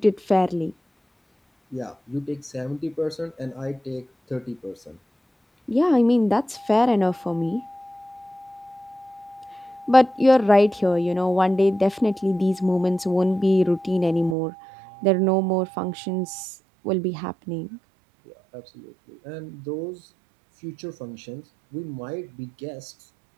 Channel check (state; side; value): drops out; left; at 14.4 s